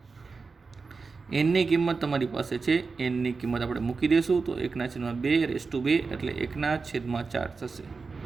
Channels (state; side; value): quieter; left; 4.5 dB